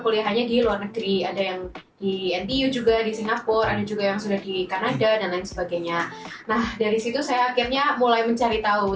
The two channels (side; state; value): both; identical; correlation 1.00